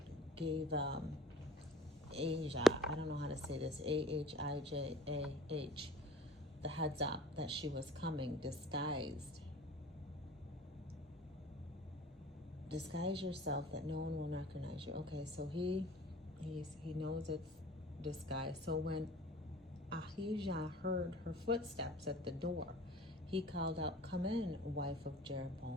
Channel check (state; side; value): normal; both; correlation 0.47